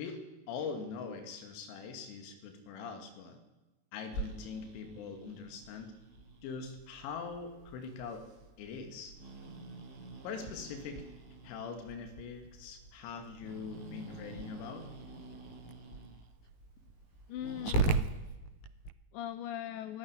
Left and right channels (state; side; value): late; right; 19 ms